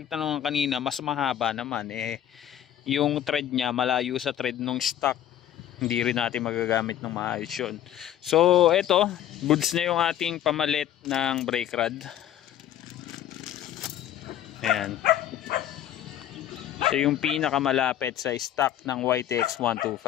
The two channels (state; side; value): quieter; right; 11.2 dB